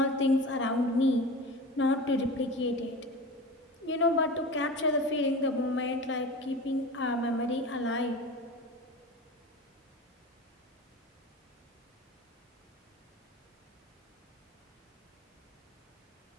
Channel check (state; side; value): normal; both; correlation 0.32